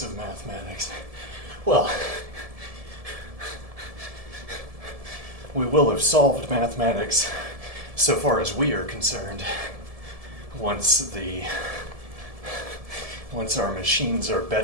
of mathematics. Well, we will have solved mathematics so far as we are concerned once our machines are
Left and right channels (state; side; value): late; left; 1.7 ms